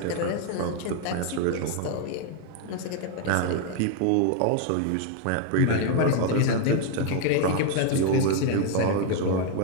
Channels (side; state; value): both; different; correlation 0.00